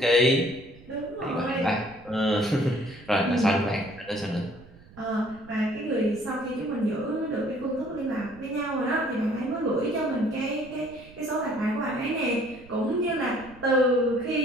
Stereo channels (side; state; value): right; noise; rumble, 22 dB below the sound